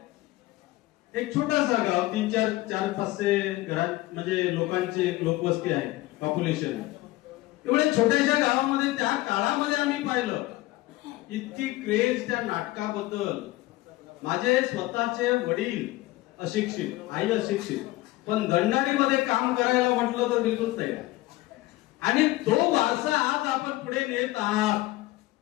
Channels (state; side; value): quieter; right; 18.4 dB